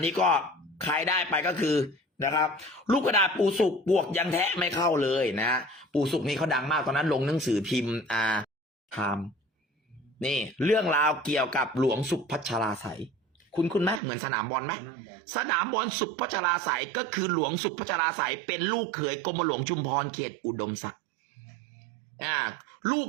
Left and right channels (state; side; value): drops out; left; at 14.0 s